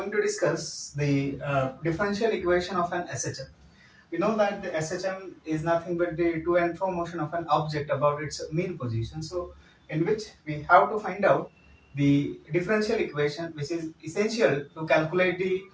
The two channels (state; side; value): identical; both; correlation 1.00